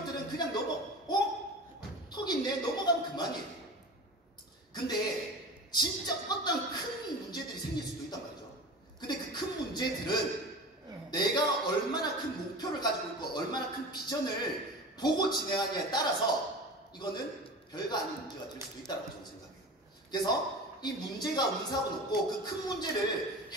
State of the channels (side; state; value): both; normal; correlation 0.33